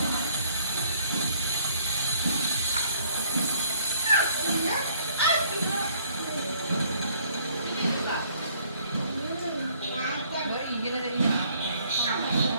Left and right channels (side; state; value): both; inverted; correlation -0.60